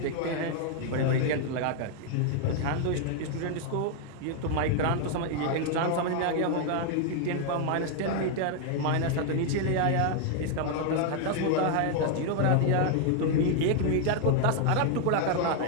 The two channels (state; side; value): different; both; correlation 0.00